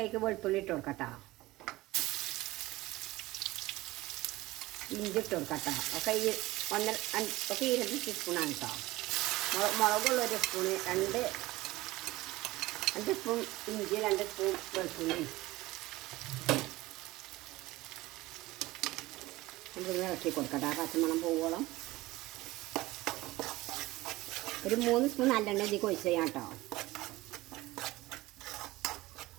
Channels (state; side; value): quieter; left; 18.9 dB